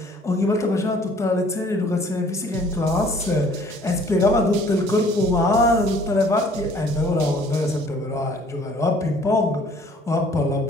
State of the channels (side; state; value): both; normal; correlation 0.56